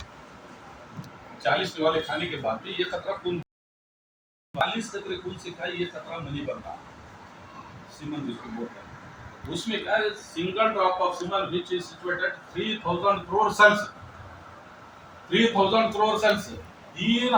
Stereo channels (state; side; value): identical; both; correlation 1.00